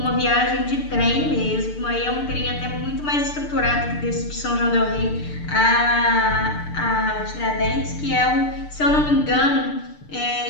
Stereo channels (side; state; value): right; late; 6.7 ms